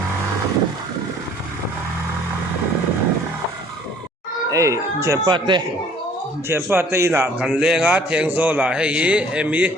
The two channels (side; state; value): both; normal; correlation 0.56